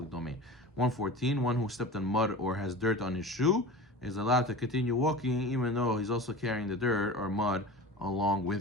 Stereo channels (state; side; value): normal; both; correlation 0.34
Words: domain. 114. One who stepped on mud or has dirt on his shoe is allowed to continue walking even though he's also carrying the dirt or mud along